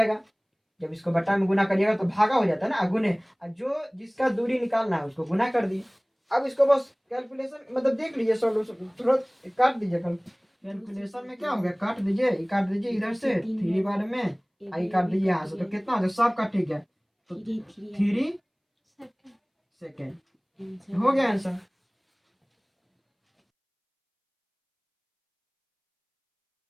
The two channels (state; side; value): identical; both; correlation 1.00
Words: जब इसको बट्टा में गुना करिएगा तो भागा हो जाता है ना, गुने, जो जिसका दूरी निकालना है उसको गुना कर दिए। अब इसको बस कैलकुलेशन मतलब देख लीजिए, सॉल्यूशन थोड़ा काट दीजिए, कैलकुलेशन में क्या हो गया, काट दीजिए इधर से 3 बार में, आई काट दीजिए यहाँ से, तो कितना हो गया, सब का ठीक है, तो 3 सेकंड हो गया आंसर।